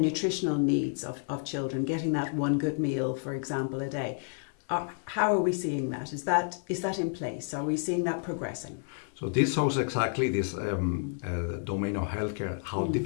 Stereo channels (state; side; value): silent; right; 58 dB below the other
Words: nutritional needs of children, getting that one good meal, for example, a day, how are we seeing that? Is that in place? Are we seeing that progressing? So this shows exactly this domain of healthcare, how